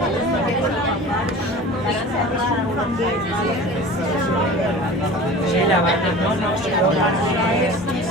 Sí, la banda, no, si no,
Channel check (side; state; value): both; normal; correlation 0.39